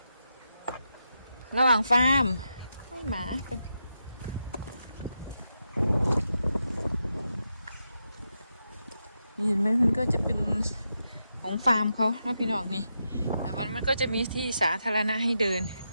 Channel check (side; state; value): both; inverted; correlation -0.86